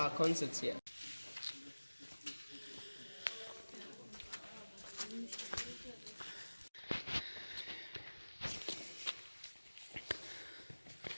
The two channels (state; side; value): inverted; both; correlation -1.00